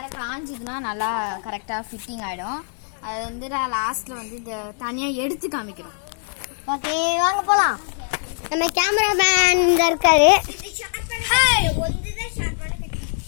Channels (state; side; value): silent; right; digital silence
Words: காஞ்சிதுன்னா நல்லா கரெக்டாக ஃபிட்டிங் ஆகிடும். அது வந்து நான் லாஸ்ட்டில் வந்து இந்த தனியாக எடுத்து காமிக்கிறோம். ஓகே வாங்க போகலாம். நம்ம கேமராமேன் இந்த இருக்காரு.